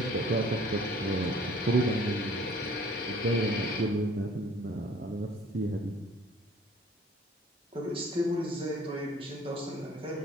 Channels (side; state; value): both; normal; correlation 0.53